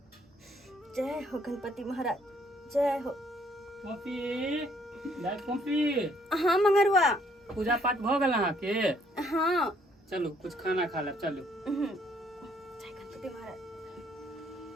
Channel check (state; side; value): normal; both; correlation 0.66